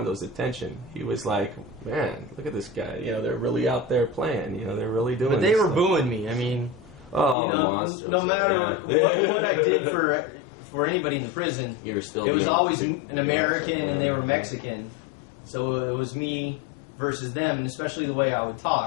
attention. He was like, man, look at this guy. You know, they're really out there playing. You know, they're really doing. But they were stuff. Booing me. I mean, you know, the monsters, no matter what I did for anybody in the prison, you were still. It was always an American, and they were Mexican. So it was me versus them, and especially the way I would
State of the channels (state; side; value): drops out; right; at 7.4 s